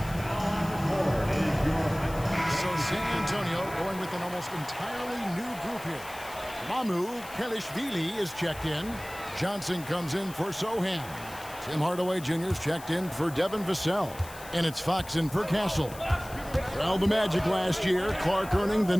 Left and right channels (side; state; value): left; noise; hiss, 17 dB below the sound